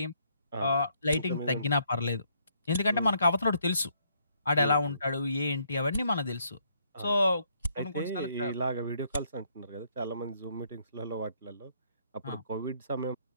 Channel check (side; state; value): both; inverted; correlation -0.71